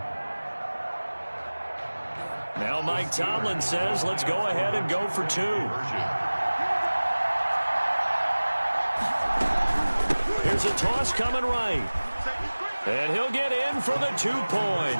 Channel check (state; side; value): inverted; both; correlation -1.00